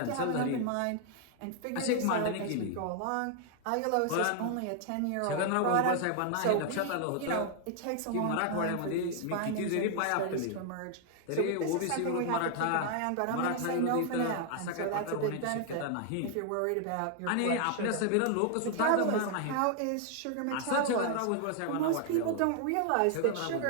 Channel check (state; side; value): different; both; correlation 0.00